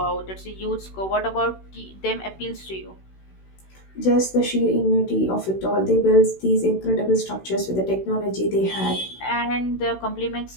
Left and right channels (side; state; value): right; late; 16 ms